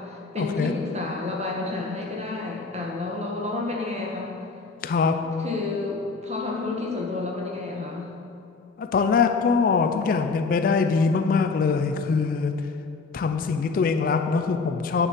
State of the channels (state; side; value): quieter; right; 4.3 dB